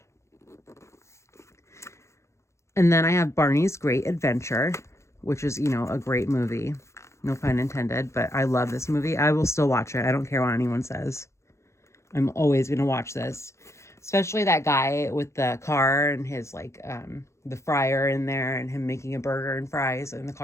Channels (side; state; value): right; late; 0.14 ms